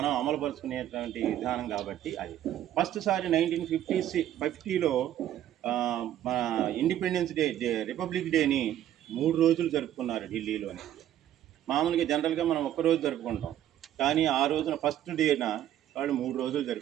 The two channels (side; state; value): left; quieter; 11.8 dB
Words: అమలుపరుచుకునేటువంటి విధానం కాబట్టి అది ఫస్ట్ సారి 1950లో మన ఇండిపెండెన్స్ డే రిపబ్లిక్ డేని 3 రోజులు జరుపుకున్నారు ఢిల్లీలోని. మామూలుగా జనరల్గా మనం ఒక్కరోజు జరుపుకుంటాం, కానీ ఆ రోజున ఫస్ట్ డేన వాళ్ళు 3 రోజులు